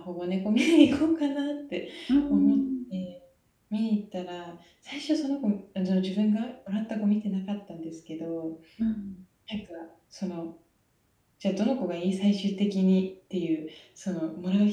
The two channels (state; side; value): identical; both; correlation 1.00